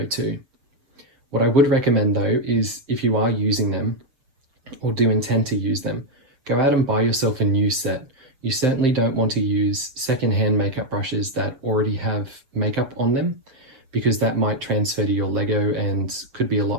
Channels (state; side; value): late; left; 7.1 ms